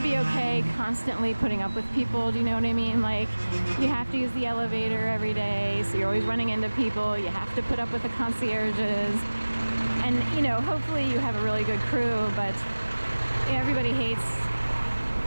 be okay constantly putting up with people, do you know what I mean? Like, you have to use the elevator every day, so you're always running into people. You have to put up with the concierges. And, you know, hopefully you have a really good crew, but everybody hates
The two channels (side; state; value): both; inverted; correlation -1.00